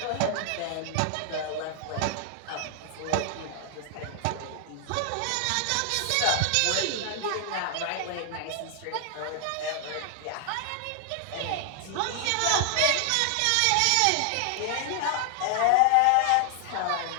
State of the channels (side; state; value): both; different; correlation 0.00